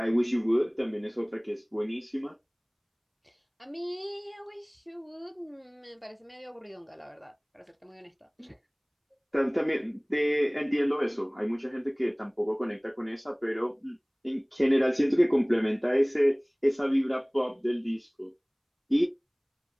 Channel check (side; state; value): both; identical; correlation 1.00